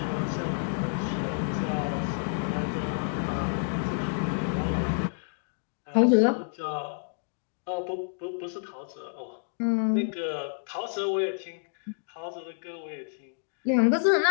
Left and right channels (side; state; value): right; silent; digital silence